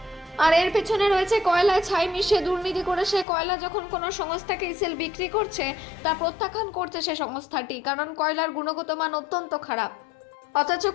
আর এর পেছনে রয়েছে কয়লায় ছাই মিশিয়ে দুর্নীতি করে সে কয়লা যখন কোনো সংস্থাকে ইসিএল বিক্রি করছে তা প্রত্যাখ্যান করছে সে সংস্থাটি, কারণ কয়লার গুণগত মান অত্যন্ত খারাপ। অথচ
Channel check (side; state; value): right; drops out; at 3.2 s